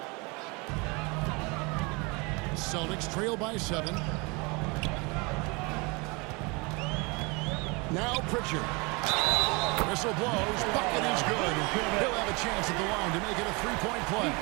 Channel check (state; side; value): quieter; left; 28.1 dB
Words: Celtics trail by 7. Now Pritchard. Whistle blows. Bucket is good. He'll have a chance at the line to make it a 3-point play.